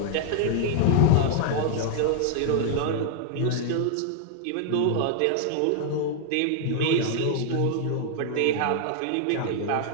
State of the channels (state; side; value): different; both; correlation 0.00